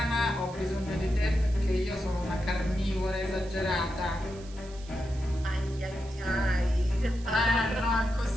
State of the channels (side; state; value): right; noise; hiss, 21 dB below the sound